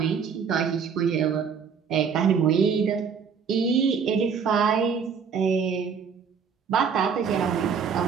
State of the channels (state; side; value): quieter; left; 6.4 dB